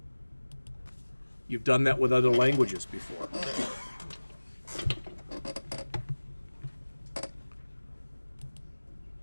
You've done that with other languages before.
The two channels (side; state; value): both; inverted; correlation -1.00